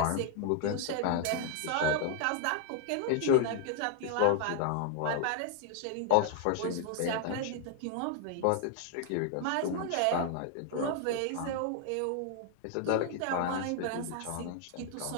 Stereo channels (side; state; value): both; different; correlation 0.00